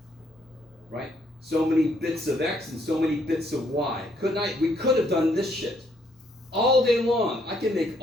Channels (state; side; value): normal; both; correlation 0.70